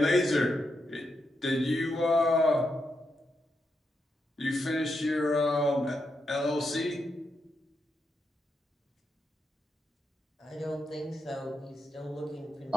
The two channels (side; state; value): both; normal; correlation 0.84